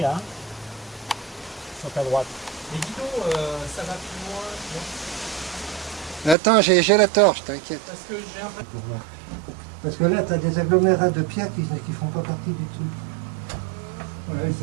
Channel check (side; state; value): left; drops out; at 6.4 s